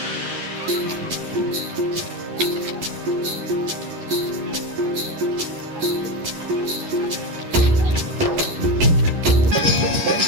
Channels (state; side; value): late; left; 11 ms